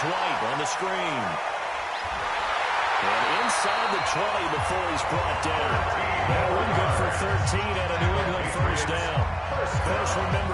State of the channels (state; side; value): identical; both; correlation 1.00